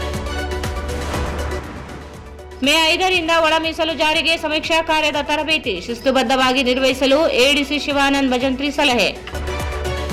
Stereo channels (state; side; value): identical; both; correlation 1.00